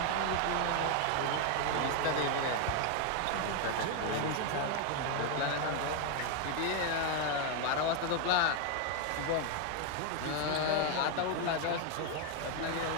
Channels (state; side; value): different; both; correlation 0.01